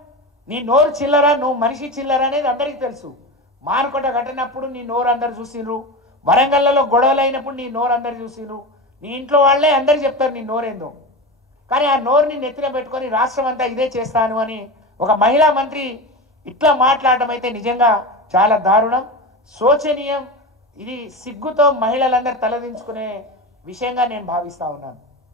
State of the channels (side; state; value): both; normal; correlation 0.24